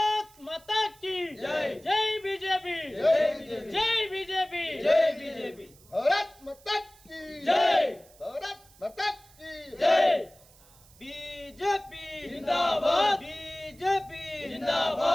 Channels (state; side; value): noise; right; hiss, 26 dB below the sound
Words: माता की जय, जय बीजेपी, जय बीजेपी, जय बीजेपी, भारत माता की जय, भारत माता की जय, बीजेपी जिंदाबाद, बीजेपी